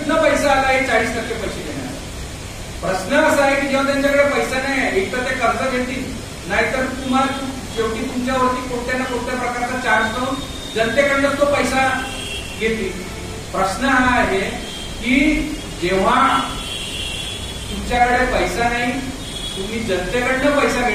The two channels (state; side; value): identical; both; correlation 1.00